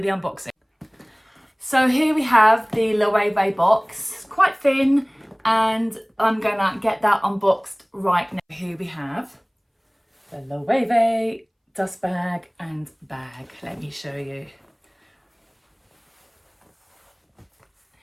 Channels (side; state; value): both; identical; correlation 1.00